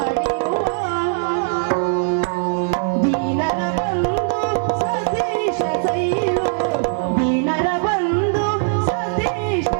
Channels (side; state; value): left; silent; 66 dB below the other